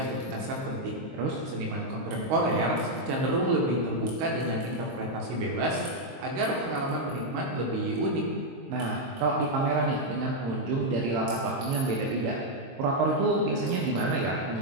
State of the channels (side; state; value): left; late; 22 ms